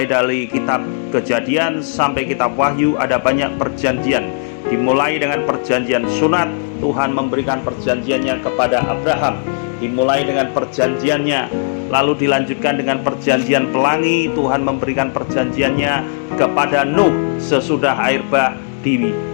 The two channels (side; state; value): right; silent; digital silence